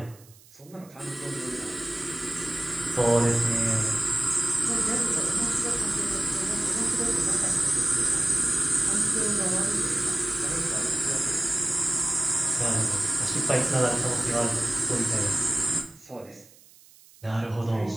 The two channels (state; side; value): noise; right; hiss, 25 dB below the sound